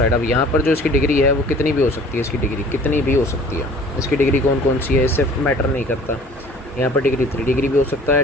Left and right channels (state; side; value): normal; both; correlation 0.50